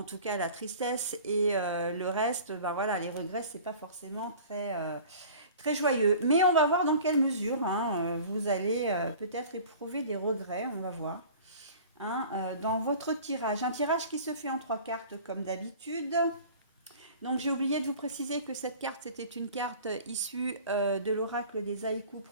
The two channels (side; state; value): both; inverted; correlation -0.44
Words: tout cas à la tristesse, et le reste, bah voilà, les regrets, c'est pas forcément très joyeux. Mais on va voir dans quelle mesure vous allez peut-être éprouver des regrets, on va voir. Dans votre tirage, un tirage qui se fait en trois cartes comme d'habitude. Donc j'ai oublié de vous préciser que cette carte c'était une carte issue de l'oracle des haïkus